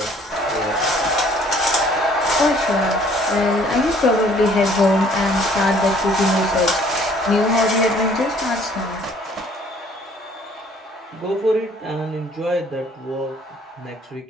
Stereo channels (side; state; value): both; normal; correlation 0.58